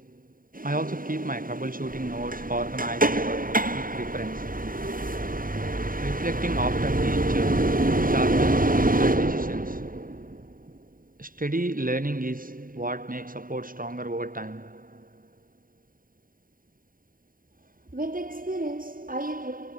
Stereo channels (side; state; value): left; late; 0.41 ms